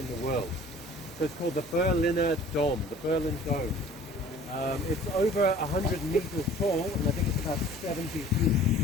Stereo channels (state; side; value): normal; both; correlation 0.49